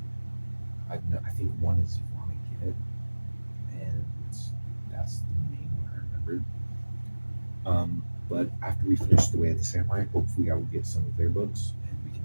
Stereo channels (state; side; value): inverted; both; correlation -1.00